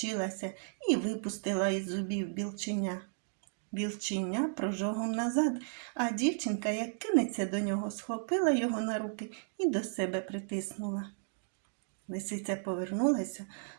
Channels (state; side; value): silent; left; digital silence